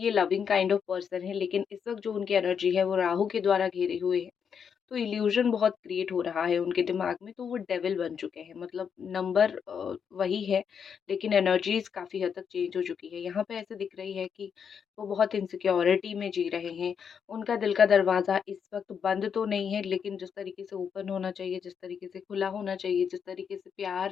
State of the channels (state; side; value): quieter; right; 7.1 dB